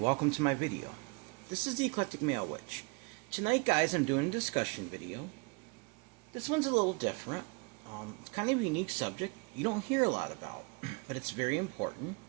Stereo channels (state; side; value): quieter; left; 30.3 dB